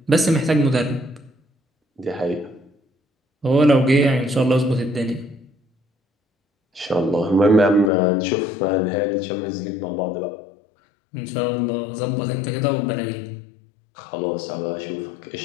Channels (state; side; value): drops out; right; at 7.9 s